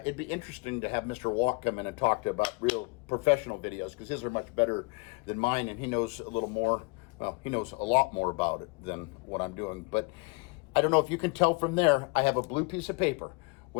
be interesting to have Mr. Walk come in and talk to about real professional videos, because his are much better than mine, and he knows a little more. Well, he knows a lot more about it than what I'm doing. But I don't know if you can tell from there, I have a blue piece of paper.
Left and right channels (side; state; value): right; quieter; 29.2 dB